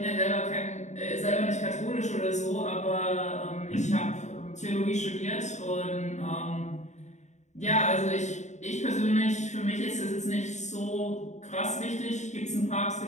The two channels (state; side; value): late; right; 0.34 ms